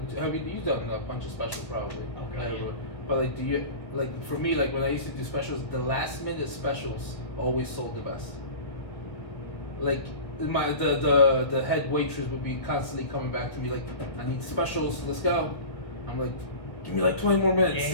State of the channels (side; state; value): right; late; 1.7 ms